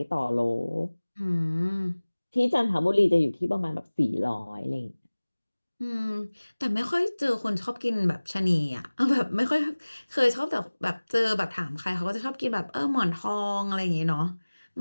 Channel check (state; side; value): inverted; both; correlation -1.00